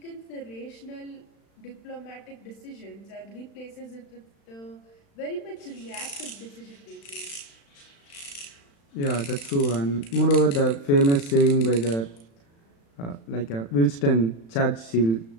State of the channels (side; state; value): right; late; 35 ms